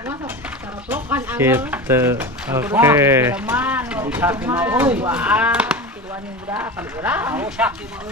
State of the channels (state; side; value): normal; both; correlation 0.28